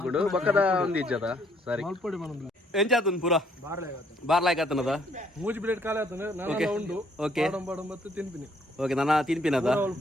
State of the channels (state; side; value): normal; both; correlation 0.66